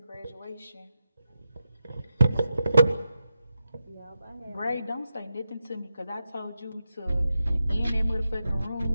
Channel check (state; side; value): inverted; both; correlation -0.89